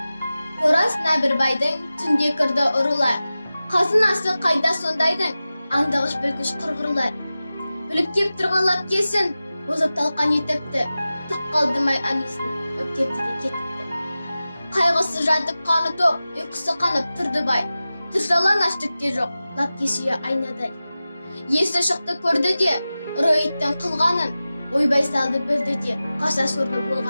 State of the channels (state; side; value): inverted; both; correlation -0.95